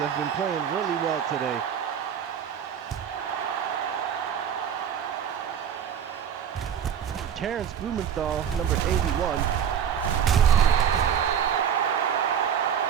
been playing really well today. Terrence Blumenthal, number 81.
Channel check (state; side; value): quieter; left; 8.5 dB